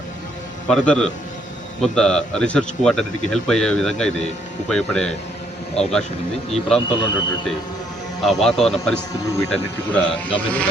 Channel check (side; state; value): both; normal; correlation 0.69